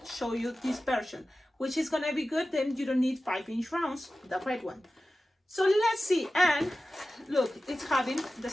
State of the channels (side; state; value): both; normal; correlation 0.95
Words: show you this version, which is gonna be good. Then you don't need 5-inch rounds, the red one. So let's see. And look, it's having the